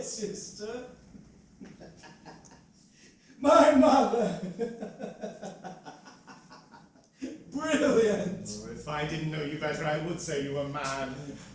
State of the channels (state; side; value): identical; both; correlation 1.00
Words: sister? My mother! Brilliant! Oh, if I didn't know you better, I would say you were mad.